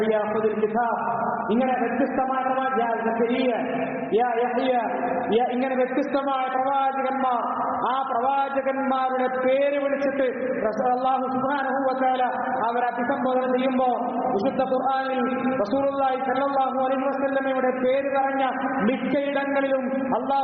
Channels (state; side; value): identical; both; correlation 1.00